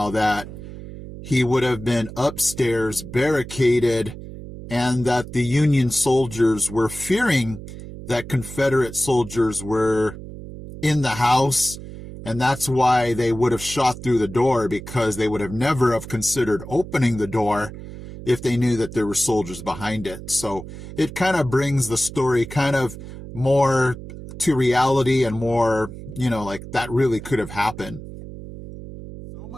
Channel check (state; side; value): noise; right; hum, 12 dB below the sound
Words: that he would have been upstairs barricaded and that the Union soldiers were fearing that Confederate soldiers were in the house. And that's why they would have shot through the door, because they would have never have considered opening the door if they knew that there were soldiers behind it. So it kind of brings the story kind of more to reality and more, like that really could have happened. So